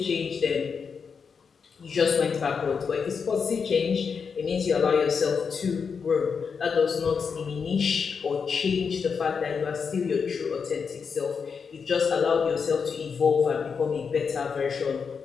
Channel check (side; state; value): right; quieter; 5.9 dB